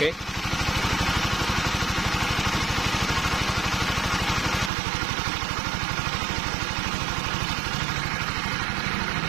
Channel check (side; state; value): left; drops out; at 4.7 s